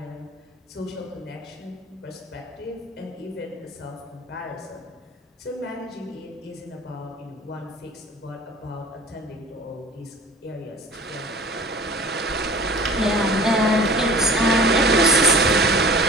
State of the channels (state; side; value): normal; both; correlation 0.44